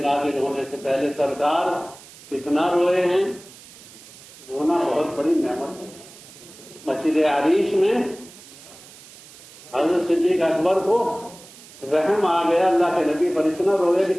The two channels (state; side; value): noise; right; hiss, 20 dB below the sound